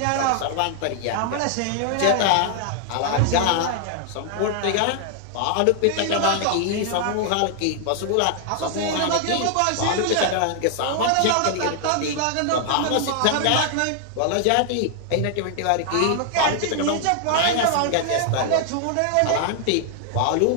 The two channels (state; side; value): different; both; correlation 0.00